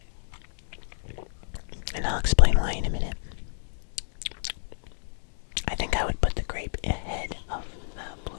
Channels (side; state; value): right; silent; digital silence